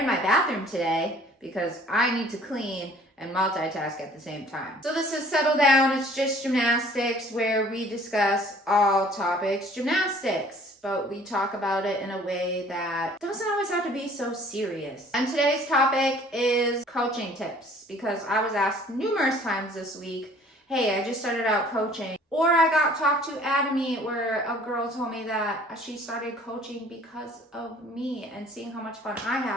my bathroom today because I need to clean and multitask at the same time. So this is Settle Down. It's just gymnastics, where we discuss all topics gymnastics, but we talk about it in a way that doesn't always have to be so serious. And today's topic is coaching tips, because I was asked numerous times this week, hey, I just started out coaching. Or I got talked to at a meet where a girl told me that she started coaching because of me and seeing how much fun I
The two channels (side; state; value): both; normal; correlation 0.54